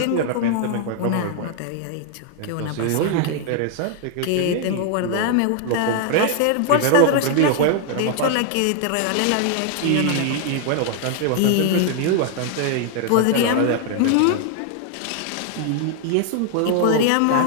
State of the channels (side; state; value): both; different; correlation 0.00